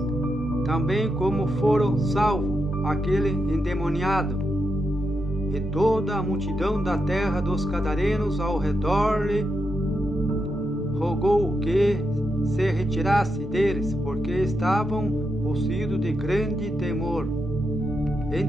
também como foram salvos aquele endemoniado. E toda a multidão da terra dos Gadarenos ao redor lhe rogou que se retirasse deles, porque estavam possuídos de grande temor.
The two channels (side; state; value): both; normal; correlation 0.84